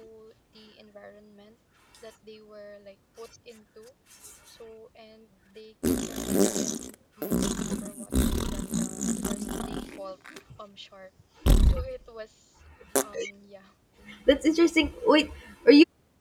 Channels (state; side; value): identical; both; correlation 1.00